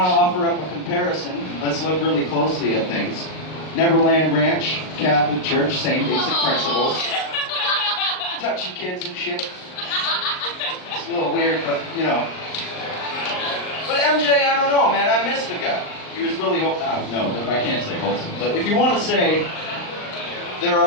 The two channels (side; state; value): right; late; 39 ms